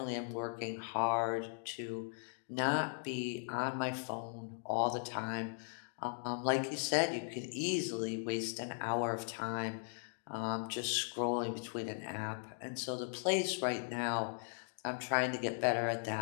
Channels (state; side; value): silent; right; digital silence